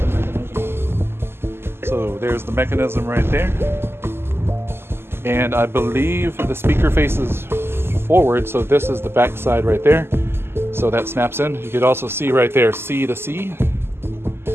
So there's the mechanism right there. And I believe the speaker faces forward, so this is the back side right there. So that snaps in. You could also see right there, C to C.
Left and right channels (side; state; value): left; late; 0.12 ms